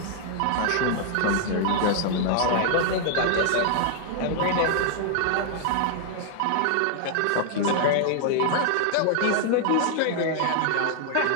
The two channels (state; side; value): different; both; correlation 0.00